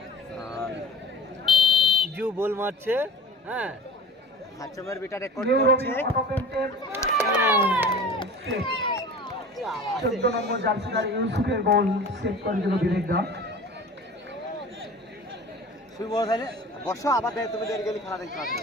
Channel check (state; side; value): normal; both; correlation 0.39